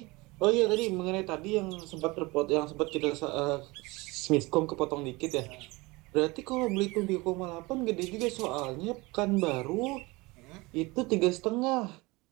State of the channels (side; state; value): left; quieter; 23.5 dB